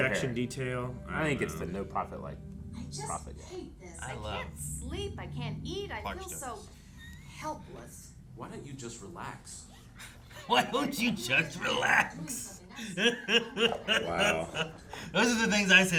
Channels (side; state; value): both; identical; correlation 1.00